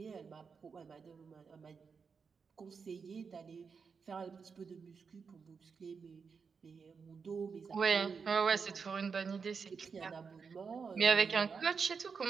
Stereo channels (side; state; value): left; quieter; 5.6 dB